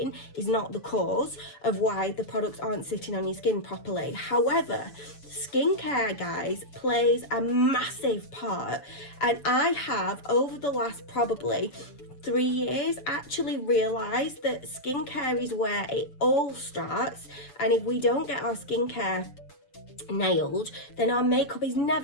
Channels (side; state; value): right; late; 7.0 ms